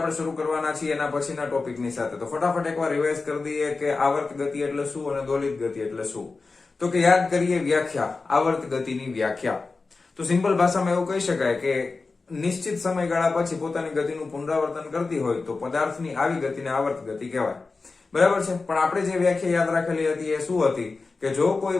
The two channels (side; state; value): right; quieter; 4.0 dB